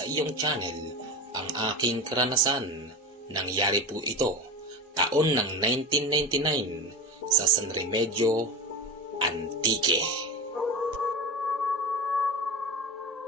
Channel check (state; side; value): normal; both; correlation 0.26